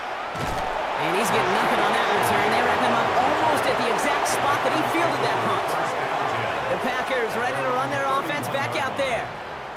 And he's getting nothing on that return. They wrap him up almost at the exact spot that he fielded that punt. The Packers ready to run their offense back out there.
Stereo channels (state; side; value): identical; both; correlation 1.00